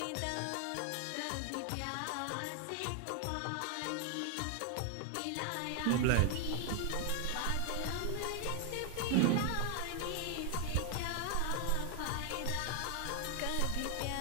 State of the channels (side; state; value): both; different; correlation 0.00